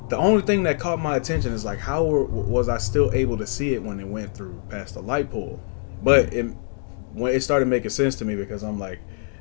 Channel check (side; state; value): right; silent; 57 dB below the other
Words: The only thing that caught my attention is like, how was I still able to see it when it went through past the light pole? But when it started making sense to me, because I'm like,